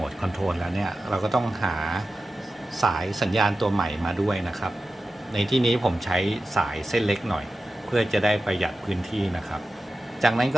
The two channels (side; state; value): both; normal; correlation 0.93